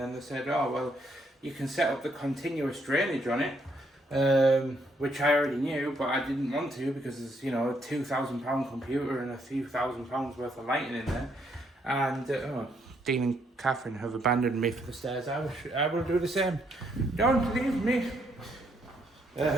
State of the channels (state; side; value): normal; both; correlation 0.73